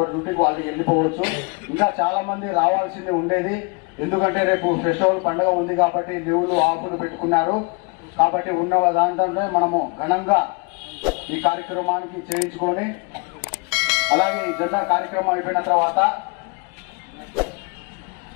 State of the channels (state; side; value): quieter; right; 32.0 dB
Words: డ్యూటీకి వాళ్ళు వెళ్ళిపోవచ్చు. ఇంకా చాలా మంది రావాల్సింది ఉండేది. ఎందుకంటే రేపు ఫెస్టివల్ పండుగ ఉంది కాబట్టి లీవులు ఆఫ్లు పెట్టుకున్నారు. కాబట్టి ఉన్న దాంట్లోనే మనము ఘనంగా ఈ కార్యక్రమానికి చేయించుకొని, అలాగే ఈ జెండా కార్యక్రమం అయిపోయిన తర్వాత